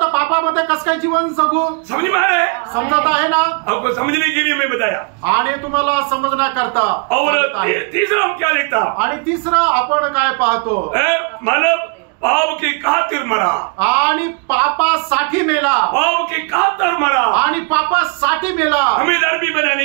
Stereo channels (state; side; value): quieter; left; 34.2 dB